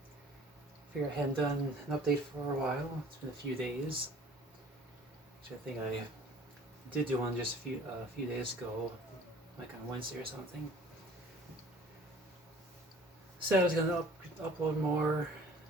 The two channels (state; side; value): normal; both; correlation 0.50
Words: Figure I hadn't done an update for a while. It's been a few days. Actually, I think I did do one just a few days ago, like on Wednesday or something. Said I was gonna upload more, or